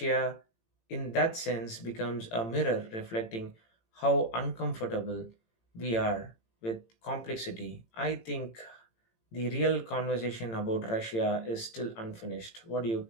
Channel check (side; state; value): right; late; 18 ms